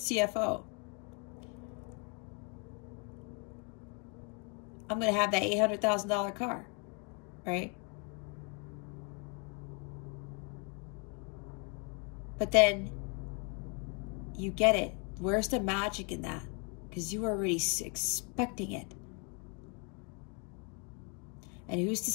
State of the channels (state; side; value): quieter; right; 34.6 dB